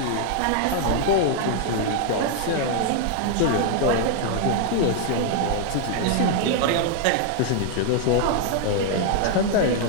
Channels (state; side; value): different; both; correlation 0.00